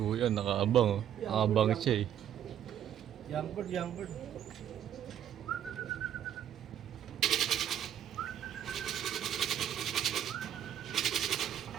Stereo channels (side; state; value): left; quieter; 10.1 dB